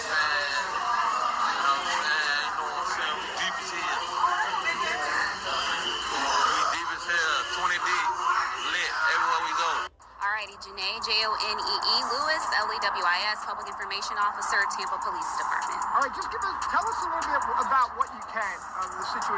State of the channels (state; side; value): identical; both; correlation 1.00